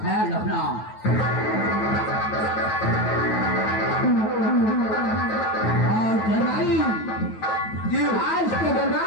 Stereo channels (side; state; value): right; late; 9.3 ms